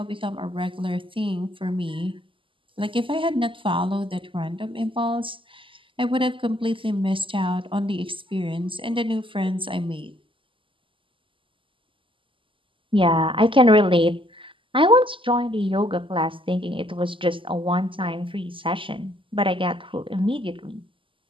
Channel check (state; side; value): late; left; 0.25 ms